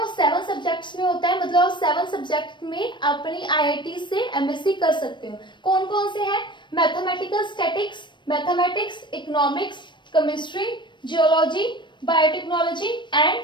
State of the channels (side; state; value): right; late; 0.22 ms